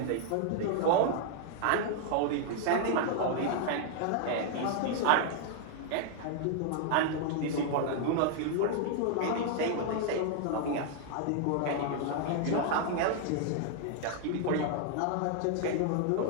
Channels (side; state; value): both; different; correlation 0.00